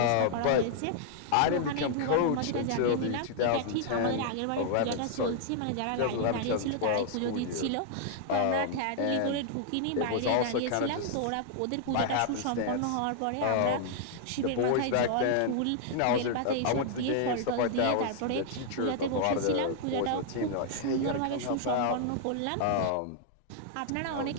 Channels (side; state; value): both; different; correlation -0.01